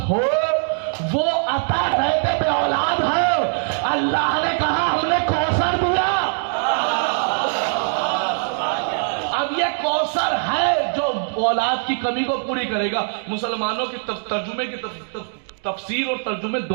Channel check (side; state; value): left; silent; 60 dB below the other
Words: ہو وہ عطا رہتے بے اولاد ہے. اللہ نے کہا ہم نے کوثر دیا. اب یہ کوثر ہے جو اولاد کی کمی کو پوری کرے گا. مسلمانوں کی ترجمے کی تفسیر اور ترجمے